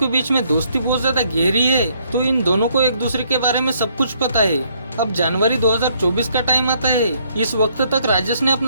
बीच में दोस्ती बहुत ज्यादा गहरी है, तो इन दोनों को एक दूसरे के बारे में सब कुछ पता है। अब जनवरी 2024 का टाइम आता है। इस वक्त तक राजेश ने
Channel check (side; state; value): both; inverted; correlation -0.68